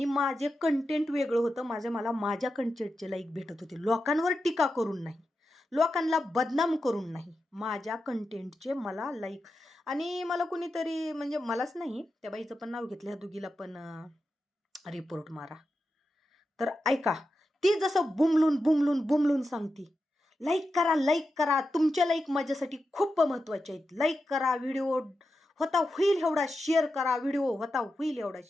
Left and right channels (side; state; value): both; normal; correlation 0.89